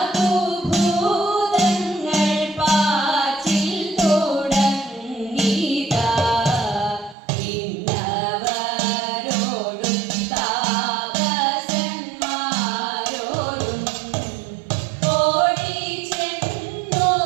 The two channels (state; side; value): drops out; left; at 7.2 s